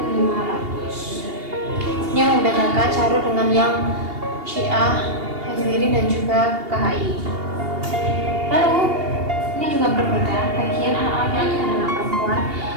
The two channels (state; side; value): late; left; 2.8 ms